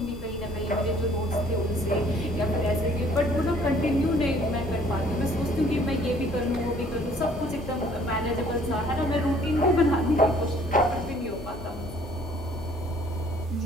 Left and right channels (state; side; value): normal; both; correlation 0.58